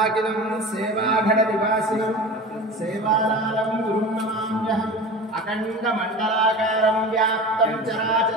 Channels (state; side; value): normal; both; correlation 0.34